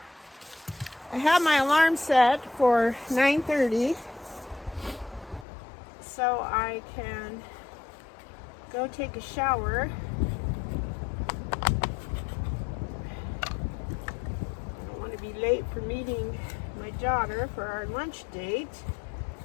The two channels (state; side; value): drops out; right; at 5.5 s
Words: I have my alarm set for 9:30 so I can go take a shower. I don't want to be late for meeting my daughter for our lunch date.